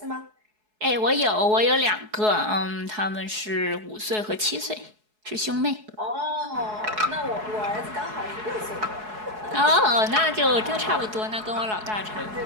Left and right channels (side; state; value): left; late; 4.7 ms